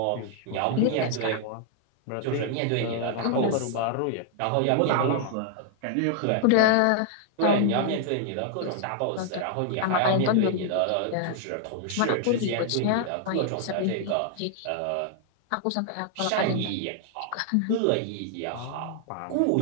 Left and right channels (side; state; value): both; different; correlation 0.00